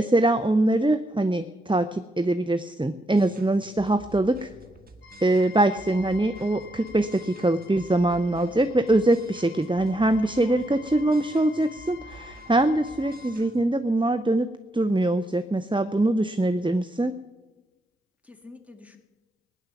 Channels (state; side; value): normal; both; correlation 0.78